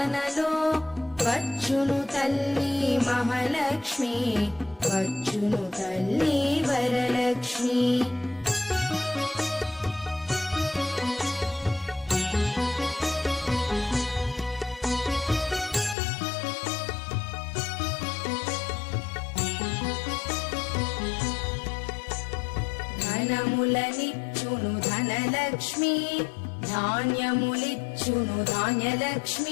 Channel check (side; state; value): right; drops out; at 16.0 s